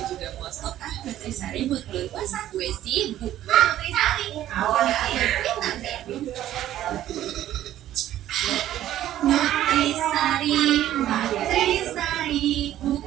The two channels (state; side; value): quieter; left; 12.7 dB